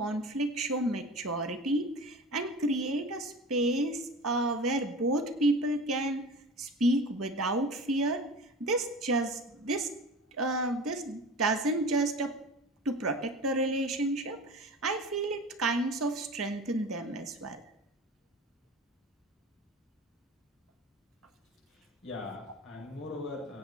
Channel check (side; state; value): both; normal; correlation 0.35